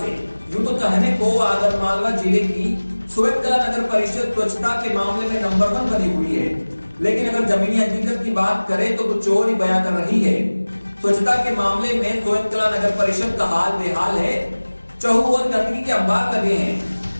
से। यूं तो कहने को आगर मालवा जिले की सोएत कला नगर परिषद स्वच्छता के मामले में नंबर 1 बनी हुई है, लेकिन अगर जमीनी हकीकत की बात करें तो कुछ और ही बयां कर रही है। स्वच्छता के मामले में सोएत कला नगर परिषद का हाल बेहाल है। चहु और गंदगी के अंबार लगे हैं,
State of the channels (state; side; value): inverted; both; correlation -1.00